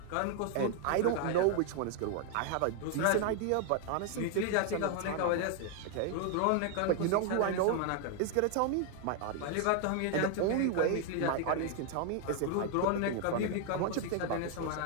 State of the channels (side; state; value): both; different; correlation 0.00